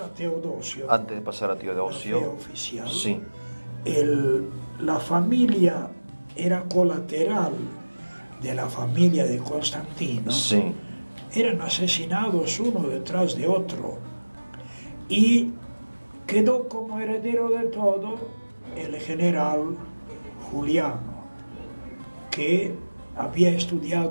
a Teodosio, antes de pasar a la fe Teodosio, oficial, sí, la familia era colateral de la familia de Constantino. sí, Eran asesinados uno detrás de otro y quedó como heredero de todo el general Juliano, que había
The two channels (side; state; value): both; inverted; correlation -1.00